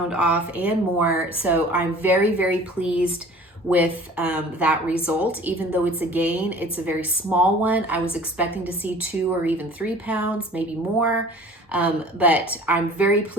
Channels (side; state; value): both; normal; correlation 0.46